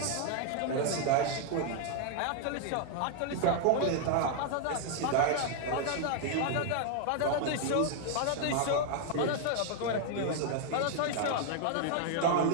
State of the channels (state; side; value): different; both; correlation 0.00